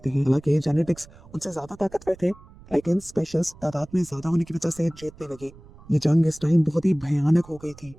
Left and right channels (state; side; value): noise; right; rumble, 22 dB below the sound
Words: हैं। हालांकि जेनेटिक्स उनसे ज्यादा ताकतवर थे लेकिन स्पेशल्स तादाद में ज्यादा होने की वजह से जीतने लगे। ये जंग इस टाइम बहुत ही भयानक हो गई थी।